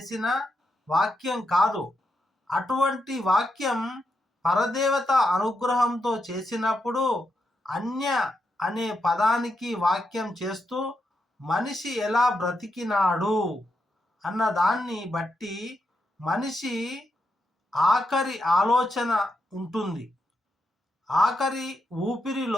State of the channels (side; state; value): both; normal; correlation 0.84